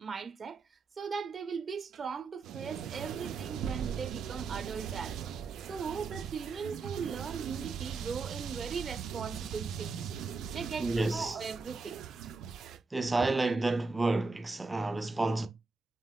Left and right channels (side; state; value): left; quieter; 4.1 dB